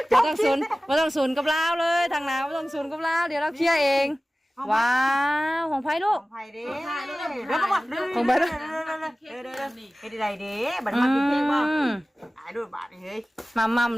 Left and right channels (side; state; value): both; normal; correlation 0.97